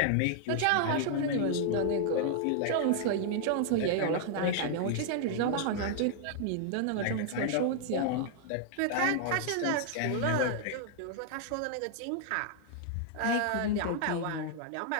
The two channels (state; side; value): different; both; correlation -0.01